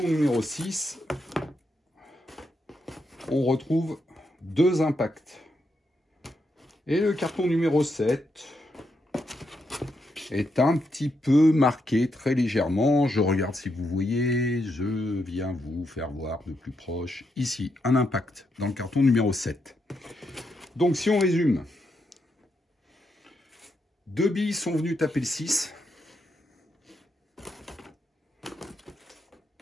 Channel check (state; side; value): normal; both; correlation 0.81